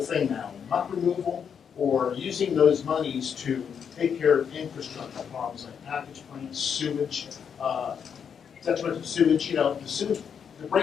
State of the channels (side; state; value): right; quieter; 7.3 dB